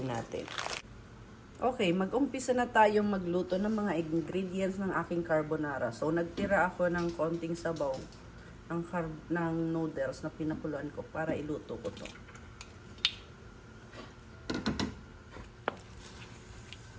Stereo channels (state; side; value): identical; both; correlation 1.00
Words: natin. Okay, mag-umpisa na tayong magluto ng mga ingredients ng aking carbonara. So, nagtira ako ng konting sabaw ng noodles na pinakuluan ko para iluto ko to.